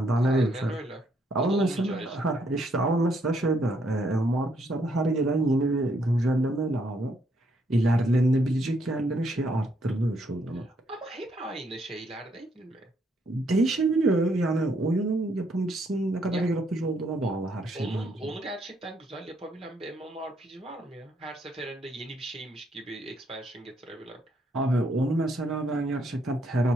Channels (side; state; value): both; normal; correlation 0.72